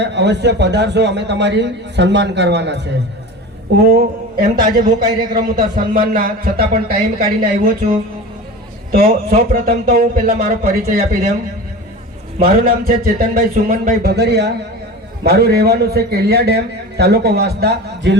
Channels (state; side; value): normal; both; correlation 0.33